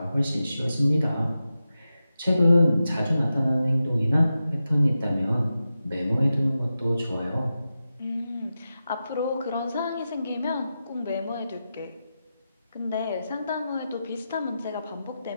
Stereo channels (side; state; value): both; inverted; correlation -0.91